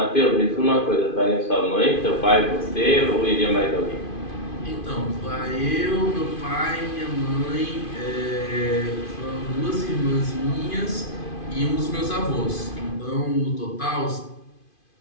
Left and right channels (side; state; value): right; late; 2.5 ms